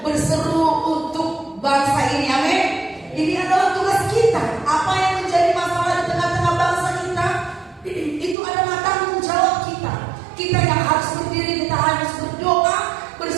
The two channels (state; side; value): drops out; left; at 8.3 s